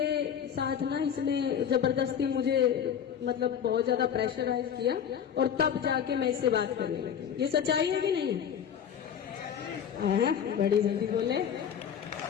साथ ना इसने जबरदस्ती मुझे मतलब बहुत ज्यादा प्रेशराइज किया और तब जाके मैं इससे बात करने लगी। ये सच्चाई है कि नहीं है? बड़ी जल्दी बोले।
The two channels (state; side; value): quieter; right; 8.4 dB